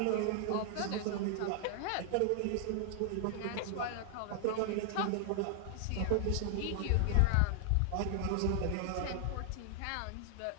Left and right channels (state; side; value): different; both; correlation 0.00